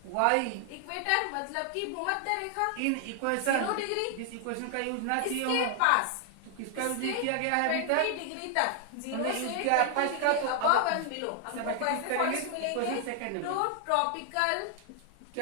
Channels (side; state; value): both; different; correlation 0.00